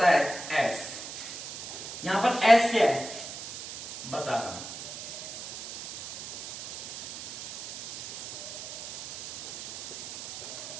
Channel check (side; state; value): right; noise; hiss, 9 dB below the sound